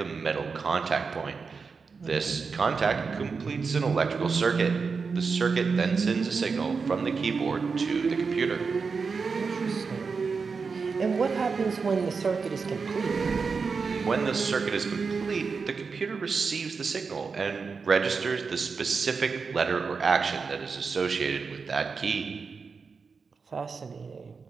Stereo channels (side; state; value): left; quieter; 5.0 dB